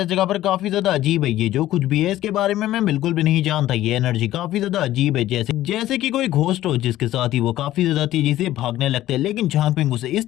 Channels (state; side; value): quieter; right; 14.3 dB